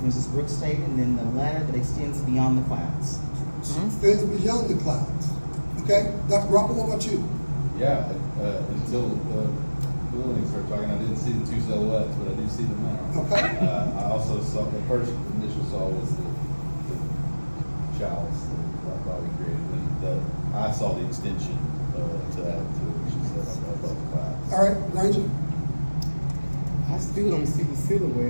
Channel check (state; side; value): inverted; both; correlation -1.00